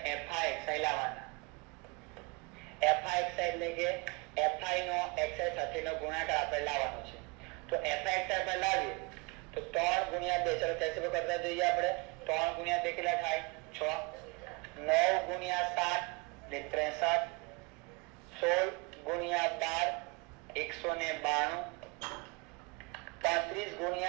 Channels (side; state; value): left; quieter; 29.2 dB